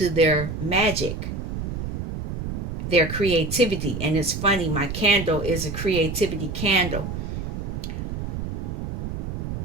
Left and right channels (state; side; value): noise; right; rumble, 4 dB below the sound